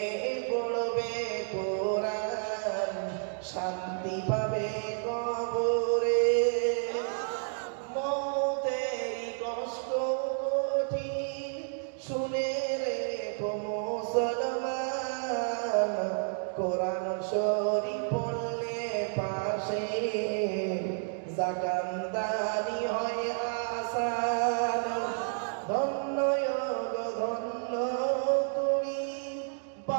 পড়বে কোরআন, শান্তি পাবে কবরে। মৌতেরই কষ্ট কঠিন শুনে রেখো মুসলমান, কোরআন শরীফ পড়লে পাশে জাকান্দানি হয় আসান। ধন্য ধন্য তুমি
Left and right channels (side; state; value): left; silent; digital silence